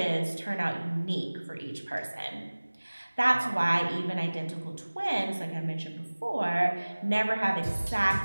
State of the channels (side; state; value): both; inverted; correlation -1.00